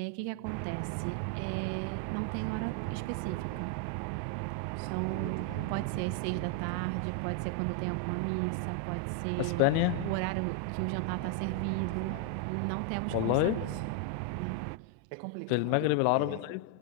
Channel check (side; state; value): both; different; correlation 0.00